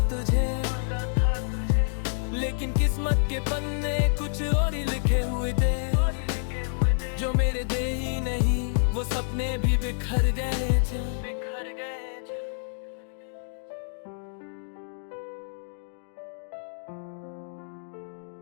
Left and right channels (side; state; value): right; silent; digital silence